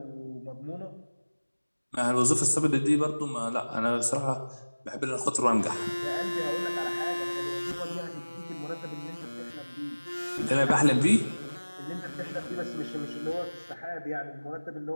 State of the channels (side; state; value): both; inverted; correlation -1.00